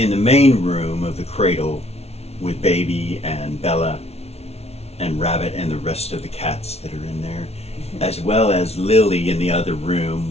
the main room of the cradle with Baby and Bella and Rabbit and the rest of the cats that are in there, as well as Lily in the other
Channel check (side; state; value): right; late; 0.31 ms